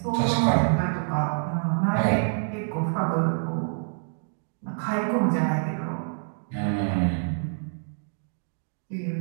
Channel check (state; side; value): silent; left; digital silence